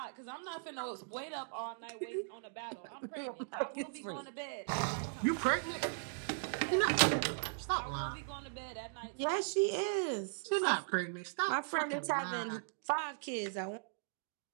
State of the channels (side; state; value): left; silent; digital silence